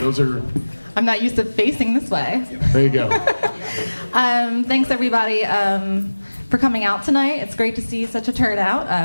are... I'm not used to facing this way. There you go. Thanks, everybody, for coming out tonight. It's great to see such a turnout.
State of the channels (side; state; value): both; inverted; correlation -1.00